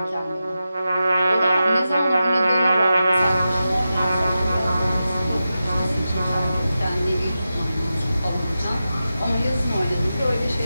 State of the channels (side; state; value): both; inverted; correlation -0.91